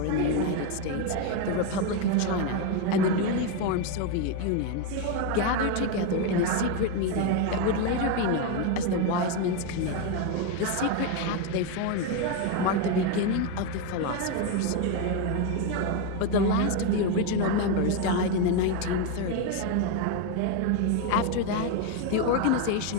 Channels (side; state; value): both; different; correlation 0.02